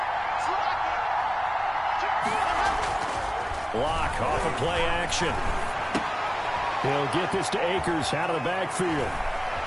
Block off of play action. He'll get this to Akers out of the backfield.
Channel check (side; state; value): both; identical; correlation 1.00